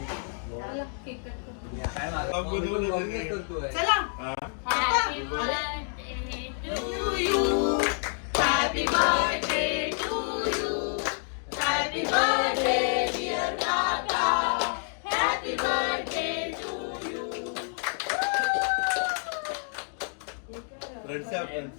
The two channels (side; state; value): right; silent; 57 dB below the other